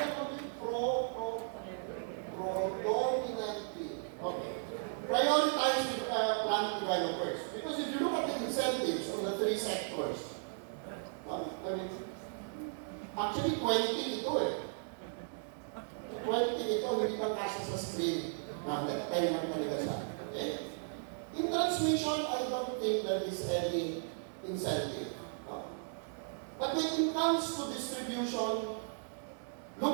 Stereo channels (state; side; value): silent; left; digital silence